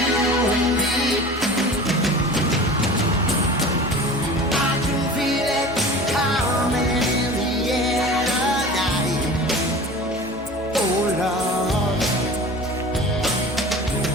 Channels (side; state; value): both; normal; correlation 0.38